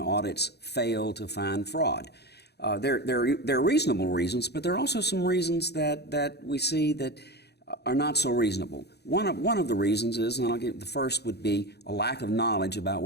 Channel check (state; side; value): late; right; 0.48 ms